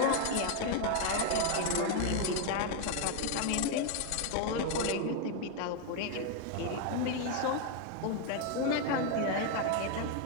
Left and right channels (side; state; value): both; different; correlation 0.01